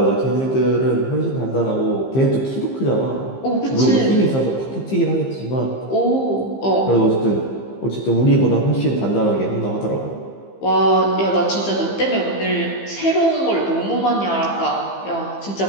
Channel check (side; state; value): right; late; 15 ms